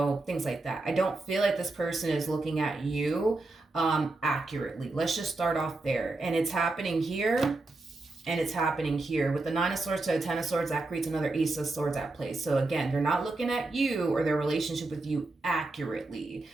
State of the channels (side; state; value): left; quieter; 3.1 dB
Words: like that. I don't feel like this person is looking at you accurately. Let's just start off there. And it's happening here. And it's happening here. With the Nine of Swords to the Ten of Swords, that creates another Ace of Swords at play. So again, they're not looking at you or their relationship with you accurately.